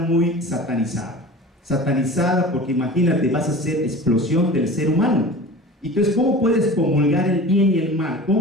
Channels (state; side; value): normal; both; correlation 0.37